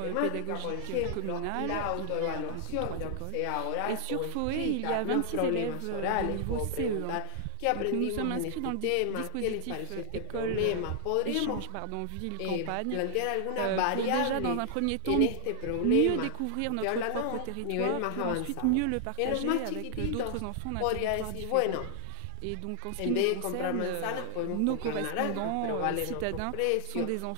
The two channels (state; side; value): different; both; correlation -0.01